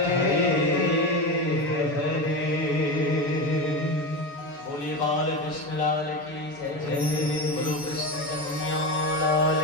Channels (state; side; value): late; right; 7.0 ms